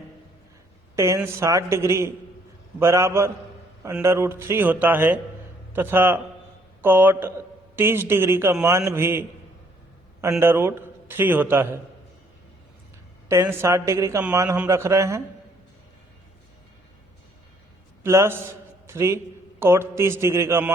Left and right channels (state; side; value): normal; both; correlation 0.65